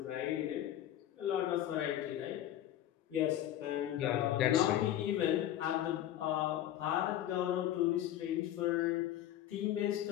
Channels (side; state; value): right; quieter; 12.2 dB